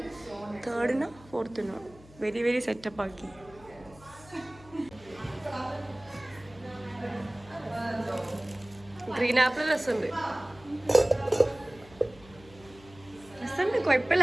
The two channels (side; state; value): left; noise; hum, 22 dB below the sound